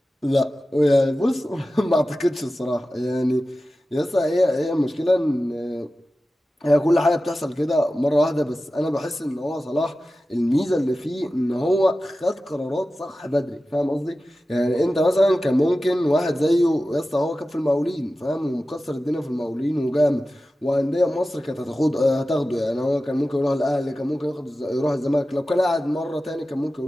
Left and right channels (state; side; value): normal; both; correlation 0.94